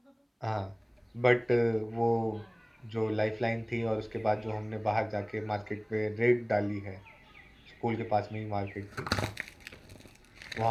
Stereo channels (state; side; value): identical; both; correlation 1.00